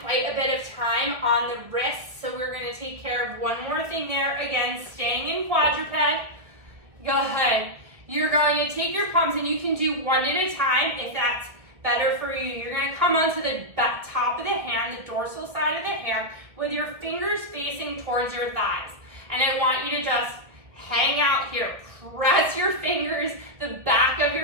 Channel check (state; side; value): late; left; 1.7 ms